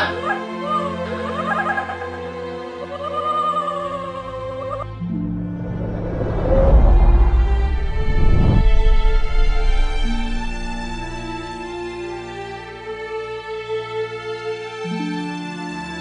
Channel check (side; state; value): both; identical; correlation 1.00